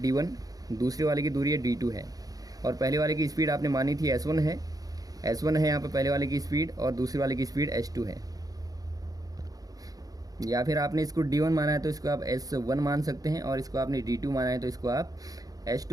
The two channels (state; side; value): late; left; 0.18 ms